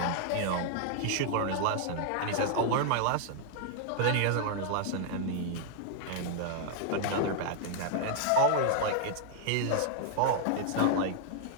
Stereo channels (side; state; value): both; different; correlation -0.01